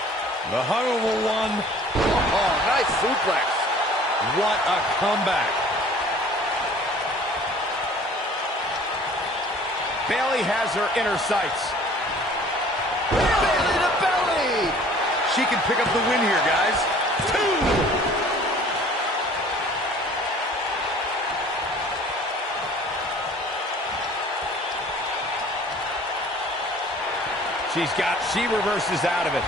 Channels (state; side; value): normal; both; correlation 0.50